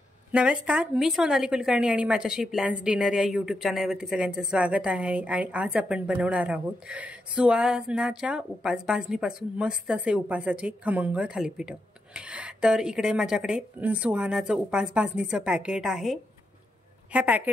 नमस्कार, मी सोनाली कुलकर्णी आणि माझ्याशी प्लॅन्स डिनर या यूट्यूब चॅनलवरती सगळ्यांचं स्वागत आहे। आणि आज आपण बनवणार आहोत सुहानाच्या उपास भाजणीपासून मस्त असे उपासाचे खमंग थालीपीठ। तर इकडे माझ्याकडे सुहानाचं उपास भाजणीचं पॅकेट आहे। ह्या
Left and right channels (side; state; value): both; normal; correlation 0.84